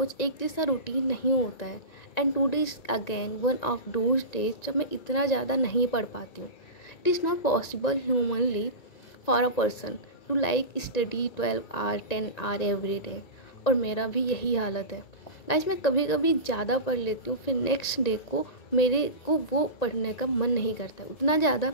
एक जैसा रूटीन नहीं होता है। And today is again one of those days जब मैं इतना ज़्यादा नहीं पढ़ पाती हूँ। It is not possible humanly for a person to like study 12 hour 10 hour every day. और मेरा भी यही हालत है गाइस। मैं कभी कभी ज़्यादा पढ़ लेती हूँ, फिर नेक्स्ट डे को मेरे को वो पढ़ने का मन नहीं करता है, उतना ज़्यादा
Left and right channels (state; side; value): late; right; 1.9 ms